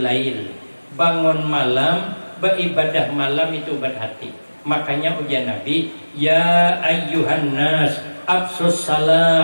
lail, bangun malam, beribadah malam itu obat hati. Makanya ujian Nabi, ya ayyuhan nas absus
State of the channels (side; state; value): both; inverted; correlation -1.00